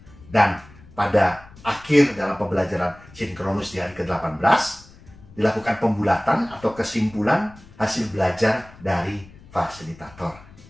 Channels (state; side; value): noise; left; rumble, 22 dB below the sound